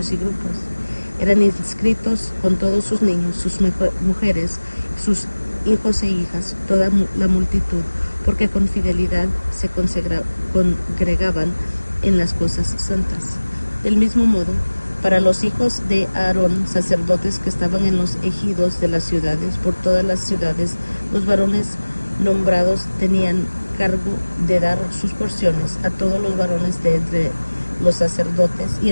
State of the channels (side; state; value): both; inverted; correlation -1.00